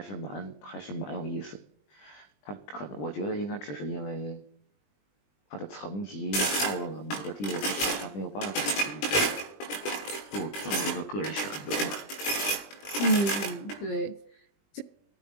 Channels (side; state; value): right; late; 20 ms